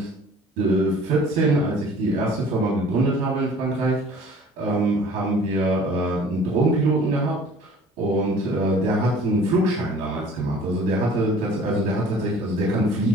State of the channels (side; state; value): both; normal; correlation 0.50